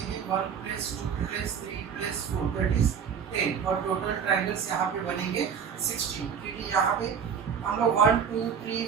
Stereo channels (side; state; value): left; quieter; 7.0 dB